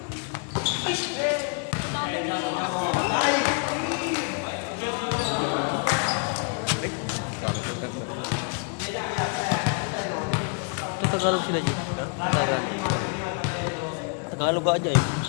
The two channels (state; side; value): quieter; right; 38.0 dB